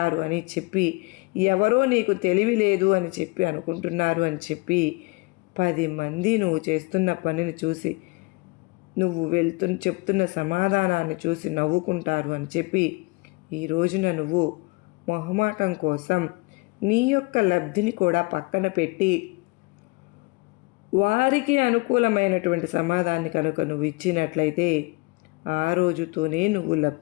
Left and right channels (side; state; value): right; quieter; 27.7 dB